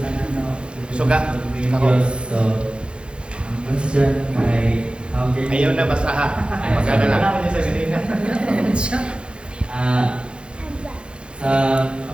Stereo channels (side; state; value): left; late; 0.055 ms